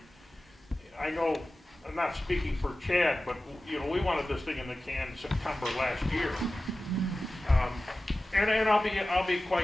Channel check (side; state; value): both; normal; correlation 0.96